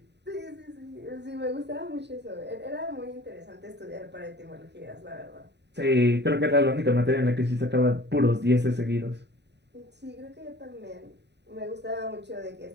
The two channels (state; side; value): late; left; 0.50 ms